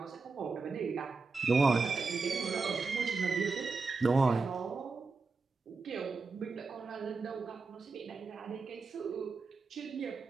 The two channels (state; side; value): quieter; left; 4.2 dB